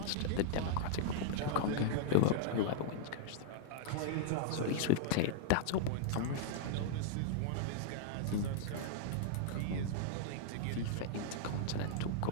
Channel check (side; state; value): both; different; correlation -0.01